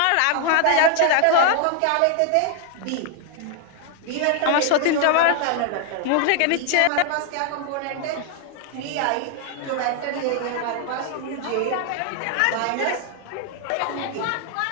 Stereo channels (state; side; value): different; both; correlation 0.00